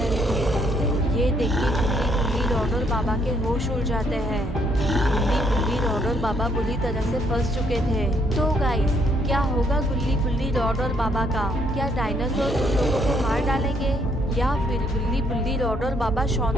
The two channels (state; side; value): normal; both; correlation 0.70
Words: थे। ये देख के गुल्ली बुल्ली, रॉड और बाबा के होश उड़ जाते हैं। गुल्ली बुल्ली, रॉड और बाबा बुरी तरह से फंस चुके थे। तो गाइस, क्या होगा गुल्ली बुल्ली, रॉड और बाबा का? क्या डायनासोर उन लोगों को मार डालेंगे या फिर गुल्ली बुल्ली, रॉड और बाबा शॉन